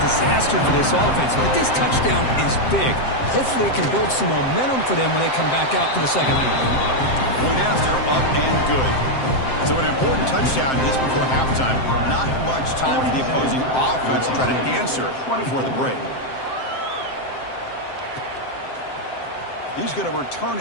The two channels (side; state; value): right; late; 7.7 ms